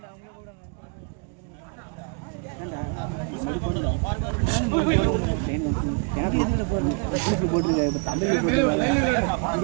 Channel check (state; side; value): quieter; left; 36.0 dB